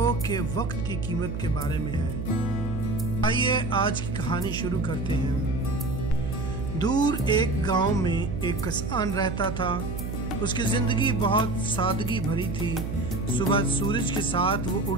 کہ وقت کی قیمت کے بارے میں ہے۔ آئیے آج کی کہانی شروع کرتے ہیں۔ دور ایک گاؤں میں ایک کسان رہتا تھا۔ اس کی زندگی بہت سادگی بھری تھی۔ صبح سورج کے ساتھ وہ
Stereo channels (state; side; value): noise; right; hum, 5 dB below the sound